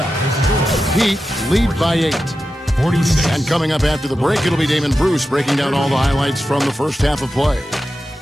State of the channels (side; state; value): both; normal; correlation 0.91